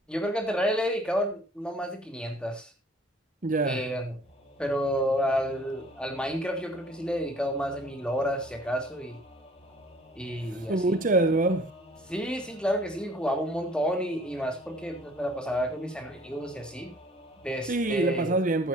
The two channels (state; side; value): normal; both; correlation 0.54